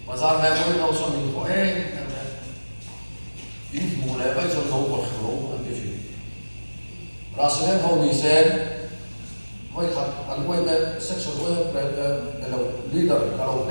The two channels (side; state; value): both; inverted; correlation -1.00